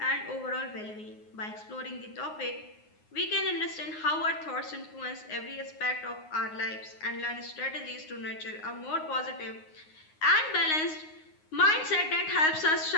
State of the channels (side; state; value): right; late; 9.6 ms